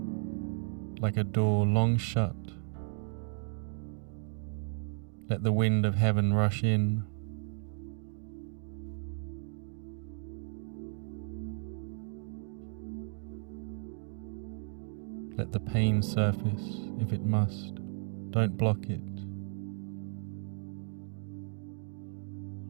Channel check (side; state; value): left; silent; 55 dB below the other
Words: like a door long shut. Let the wind of heaven rush in. Let the pain surface if it must. Don't block it.